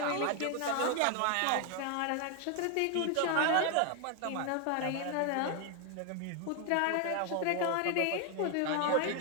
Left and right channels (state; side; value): different; both; correlation 0.01